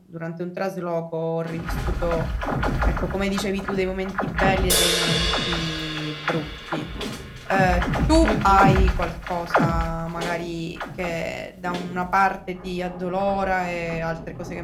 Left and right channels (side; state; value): both; identical; correlation 1.00